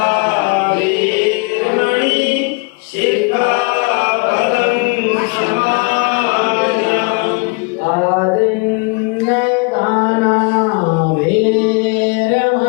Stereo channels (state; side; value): quieter; right; 32.0 dB